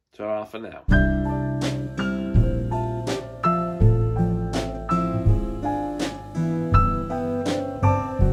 Ta-ra for now.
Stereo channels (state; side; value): identical; both; correlation 1.00